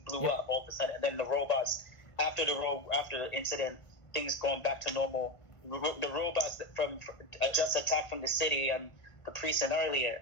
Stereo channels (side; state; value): right; late; 1.5 ms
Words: blew up all of a sudden, and then the robots, after the incident, things going back to normal. The robots that from just attacked from the city and the precinct